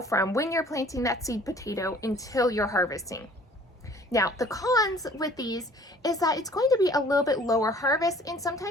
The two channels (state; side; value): normal; both; correlation 0.52